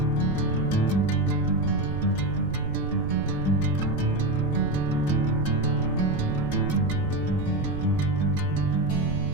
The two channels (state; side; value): noise; right; rumble, 8 dB below the sound